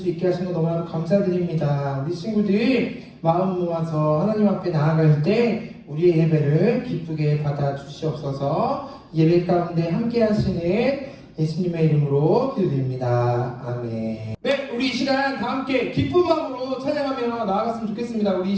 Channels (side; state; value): both; identical; correlation 1.00